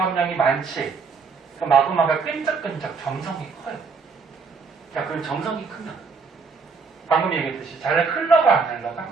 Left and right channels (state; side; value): quieter; left; 5.0 dB